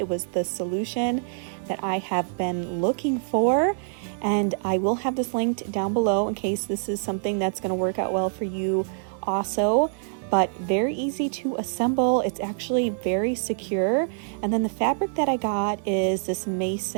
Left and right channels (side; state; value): left; silent; digital silence